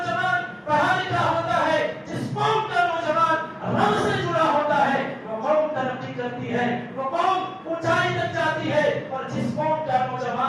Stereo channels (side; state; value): both; identical; correlation 1.00